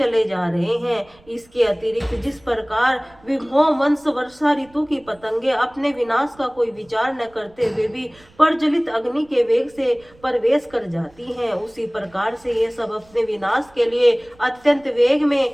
जा रहे हैं। इसके अतिरिक्त जिस प्रकार विभो वंश वर्षा ऋतु की पतंगे अपने विनाश का कोई विचार न करते हुए भी प्रज्वलित अग्नि के वेग से प्रवेश कर जाती हैं, उसी प्रकार से ये सब अपने विनाश के लिए अत्यंत वेग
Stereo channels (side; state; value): right; noise; rumble, 29 dB below the sound